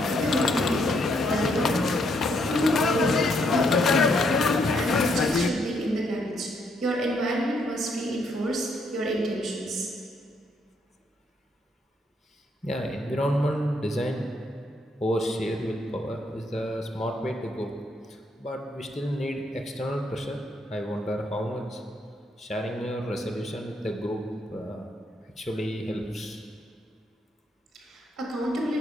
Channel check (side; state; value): both; normal; correlation 0.74